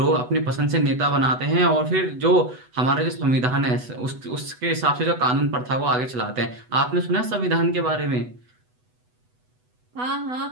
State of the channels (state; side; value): late; left; 8.1 ms